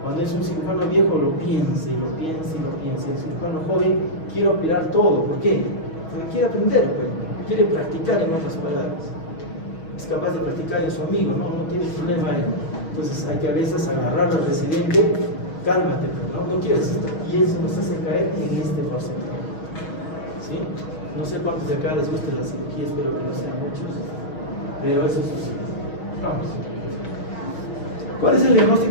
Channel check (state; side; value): late; right; 6.2 ms